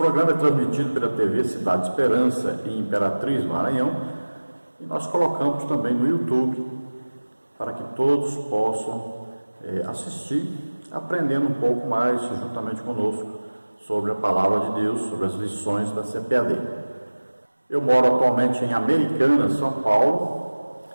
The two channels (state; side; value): inverted; both; correlation -1.00